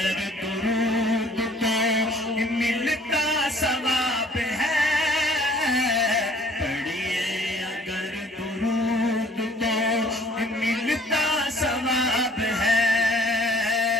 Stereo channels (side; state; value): both; normal; correlation 0.55